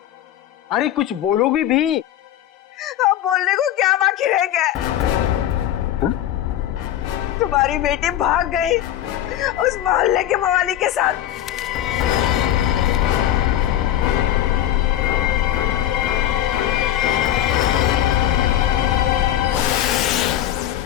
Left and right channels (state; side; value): quieter; right; 12.2 dB